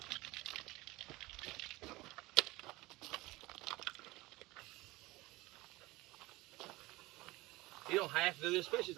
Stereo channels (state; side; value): quieter; left; 20.6 dB